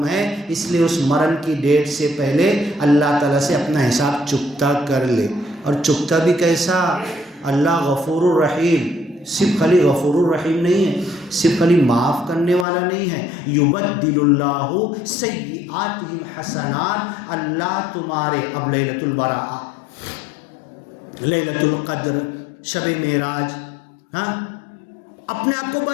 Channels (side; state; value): right; drops out; at 12.7 s